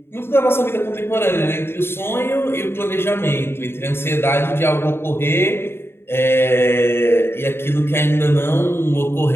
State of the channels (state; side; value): late; right; 0.11 ms